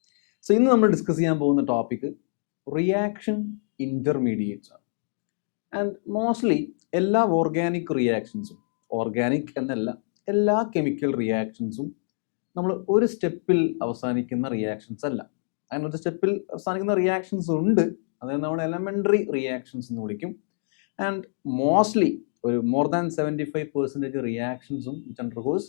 So ഇന്ന് നമ്മൾ discuss ചെയ്യാൻ പോകുന്ന ടോപ്പിക് റിയാക്ഷൻ ഇൻ്റർമീഡിയറ്റ്സ് ആണ്. ആൻഡ് മോസ്റ്റ്ലി എല്ലാ ഓർഗാനിക് റിയാക്ഷൻസും, ഓർഗാനിക് എന്നല്ല എല്ലാ കെമിക്കൽ റിയാക്ഷൻസും നമ്മൾ ഒരു സ്റ്റെപ്പിൽ അവസാനിക്കുന്ന റിയാക്ഷൻസ് അല്ല. അങ്ങനെ ഒരു സ്റ്റെപ്പിൽ അവസാനിക്കുന്ന റിയാക്ഷൻസ് ഉണ്ട്, അതായത് നമ്മൾ എലമെൻ്ററി റിയാക്ഷൻസ് എന്ന് വിളിക്കും. ആൻഡ് മോസ്റ്റ്ലി ഒരു മോർ ദാൻ 75% റിയാക്ഷൻസും which undergoes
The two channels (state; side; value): silent; right; digital silence